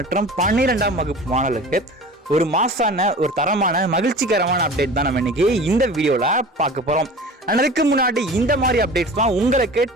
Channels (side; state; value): both; normal; correlation 0.38